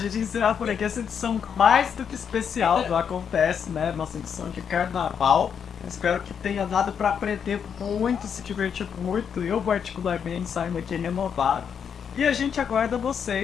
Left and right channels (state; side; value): quieter; right; 7.4 dB